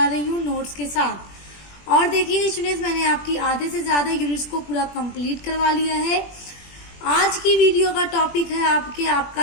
रही हूँ नोट्स के साथ। और देखिए स्टूडेंट्स, मैंने आपकी आधे से ज़्यादा यूनिट्स को पूरा कंप्लीट करवा लिया है। आज की वीडियो का टॉपिक है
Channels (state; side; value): late; right; 21 ms